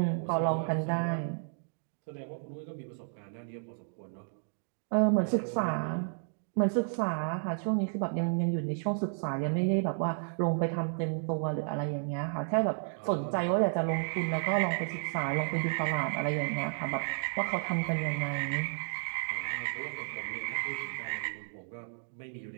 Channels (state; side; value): silent; left; digital silence